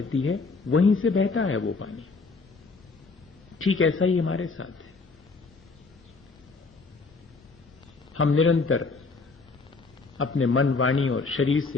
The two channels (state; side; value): quieter; right; 4.1 dB